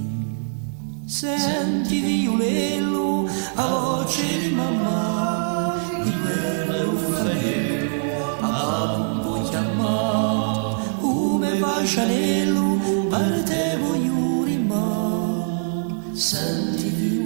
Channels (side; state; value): left; silent; digital silence